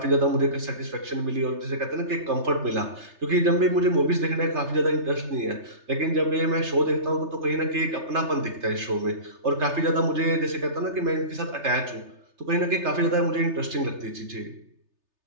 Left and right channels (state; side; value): late; left; 3.3 ms